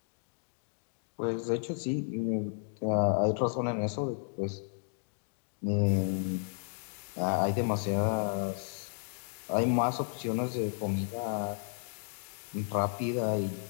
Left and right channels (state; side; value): silent; right; digital silence